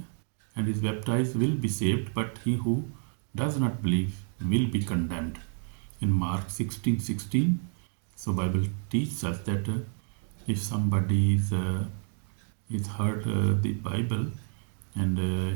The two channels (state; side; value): silent; left; 58 dB below the other